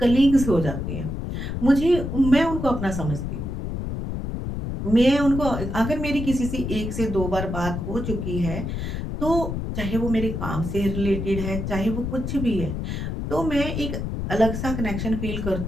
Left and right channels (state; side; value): noise; left; rumble, 4 dB below the sound